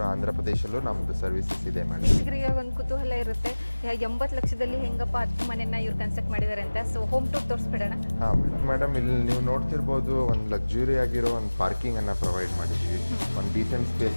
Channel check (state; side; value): inverted; both; correlation -1.00